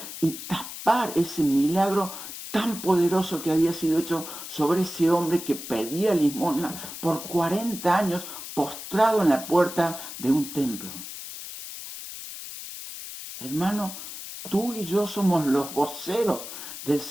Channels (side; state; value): left; noise; hiss, 10 dB below the sound